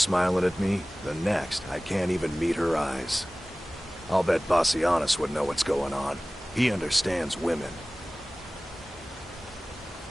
at me, the next, I can't even meet her eyes. I'll bet Bassianus would know what's going on. He understands women.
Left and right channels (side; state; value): both; normal; correlation 0.98